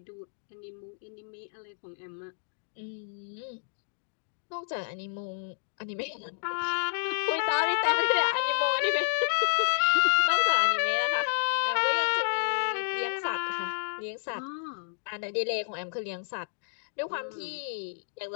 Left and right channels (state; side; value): silent; right; digital silence